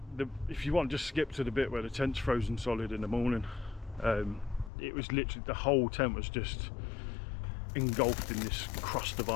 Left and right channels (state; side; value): drops out; right; at 4.7 s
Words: if you want, just skip to the bit where the tent's frozen solid in the morning. It was literally, the whole tent was just engulfed in this crust of